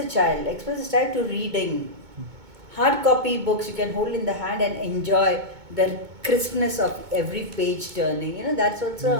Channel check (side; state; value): left; late; 2.2 ms